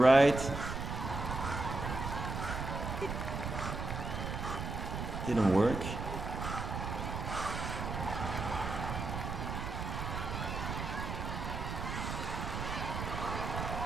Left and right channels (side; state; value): right; noise; rumble, 4 dB below the sound